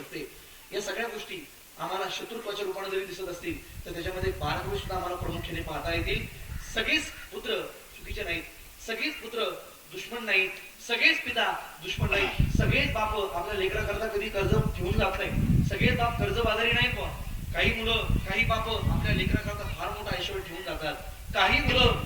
या सगळ्या गोष्टी आम्हाला शत्रुत्वाच्या रूपाने जरी दिसत असतील तर त्याच्यामध्ये बारकावे सुद्धा आम्हाला प्रामुख्याने पाहता येतील. सगळेच पुत्र चुकीचे नाहीत, सगळेच पुत्र दुश्मन नाहीत, सगळेच पिता दुश्मन नाहीत, सगळेच बाप आपल्या लेकराकरता कधी कर्ज ठेवून जात नाही, सगळेच बाप कर्जबाजारी नाहीत. काही मुलं, काही बाप आपल्या लेकराकरता फार मोठा ऐश्वर ठेवून जातात, काही मुलं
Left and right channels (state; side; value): identical; both; correlation 1.00